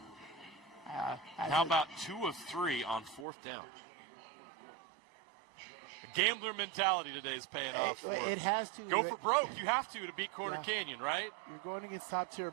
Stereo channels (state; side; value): drops out; left; at 3.2 s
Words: How about 2 of 3 on 4th down? The gambler mentality today is paying off. It has to. Go for broke. You have to beat Corner Canyon, right? You're going against top-tier